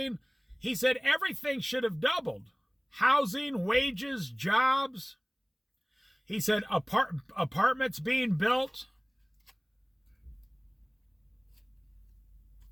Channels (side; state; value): both; identical; correlation 1.00